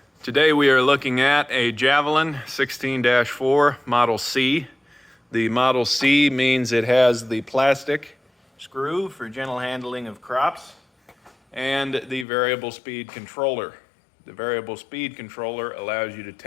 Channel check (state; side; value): drops out; right; at 12.2 s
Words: Today we are looking at a Javelin 16-4 Model C. The Model C means it has the plastic screw for gentle handling of crops and the variable speed controller. The variable speed controller allows you to